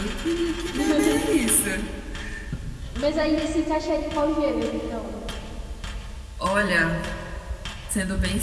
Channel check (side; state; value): both; identical; correlation 1.00